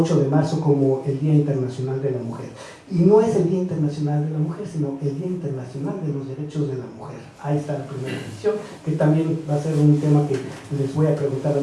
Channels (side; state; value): both; identical; correlation 1.00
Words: de marzo como el Día Internacional de la Mujer. Y no es el Día Internacional de la Mujer, sino el Día Internacional de los Derechos de la Mujer. Ahí está la primera edición, que también va a ser un tema que les voy a preguntar a